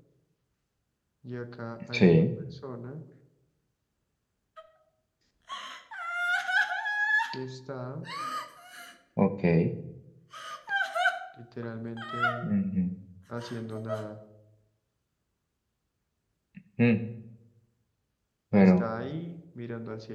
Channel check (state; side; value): identical; both; correlation 1.00